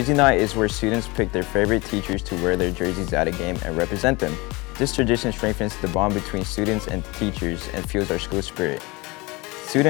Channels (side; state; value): right; quieter; 24.7 dB